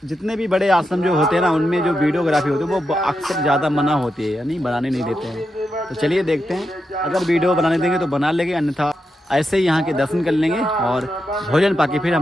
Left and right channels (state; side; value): normal; both; correlation 0.86